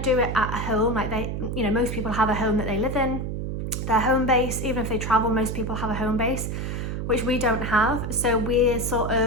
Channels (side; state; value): right; noise; hum, 3 dB below the sound